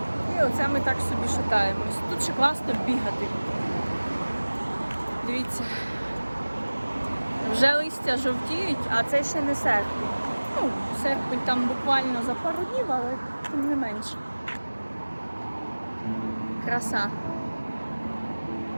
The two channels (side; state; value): both; inverted; correlation -1.00